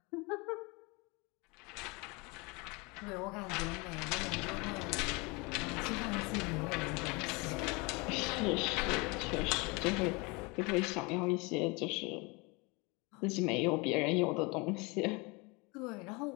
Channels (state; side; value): quieter; right; 27.7 dB